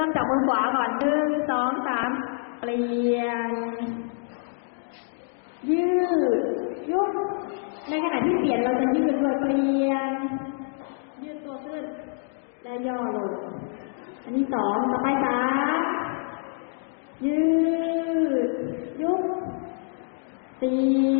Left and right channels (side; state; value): right; silent; digital silence